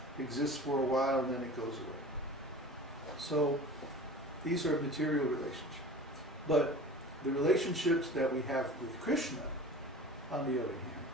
exists for a while, and then it goes away. So these are material relationships. But the relationships that we have with Krishna, on the other hand,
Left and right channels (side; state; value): both; normal; correlation 0.38